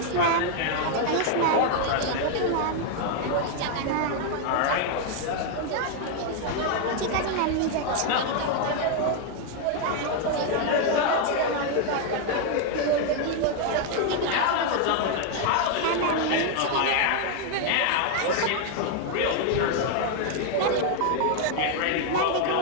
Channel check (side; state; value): both; different; correlation 0.00